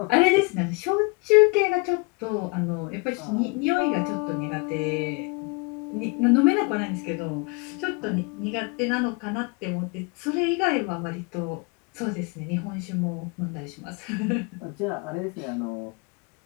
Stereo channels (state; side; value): quieter; right; 30.1 dB